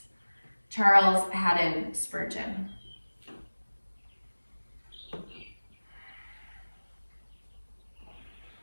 Charles Haddon Spurgeon.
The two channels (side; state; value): both; inverted; correlation -1.00